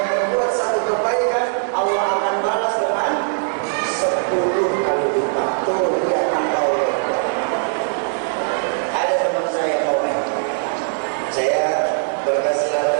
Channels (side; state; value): left; silent; digital silence